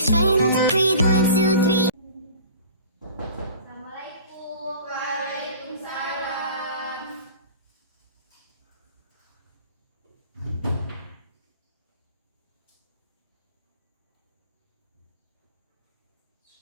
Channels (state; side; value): inverted; both; correlation -0.41